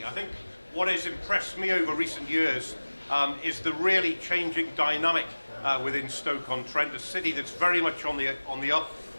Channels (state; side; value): inverted; both; correlation -1.00